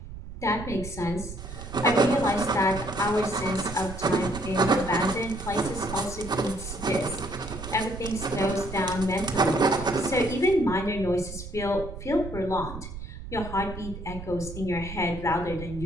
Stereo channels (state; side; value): noise; right; rumble, 11 dB below the sound